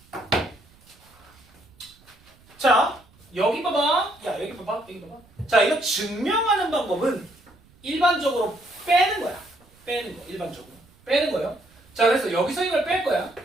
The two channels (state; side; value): noise; right; rumble, 29 dB below the sound